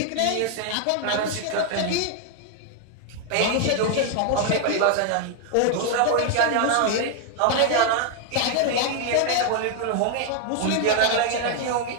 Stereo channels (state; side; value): different; both; correlation 0.00